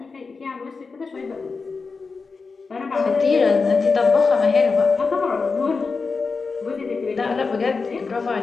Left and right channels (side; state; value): right; quieter; 4.5 dB